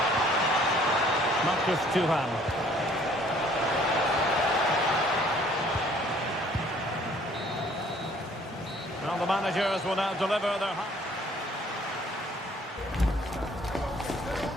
Marcus Thuram. Well, the managers will now deliver their...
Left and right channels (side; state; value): both; normal; correlation 0.58